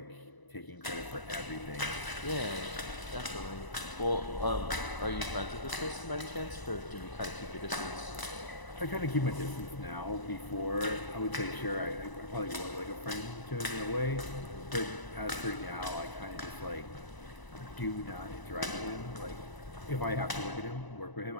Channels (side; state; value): right; late; 1.0 ms